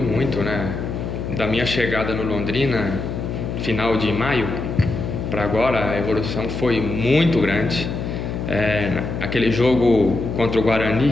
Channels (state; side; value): noise; left; hum, 5 dB below the sound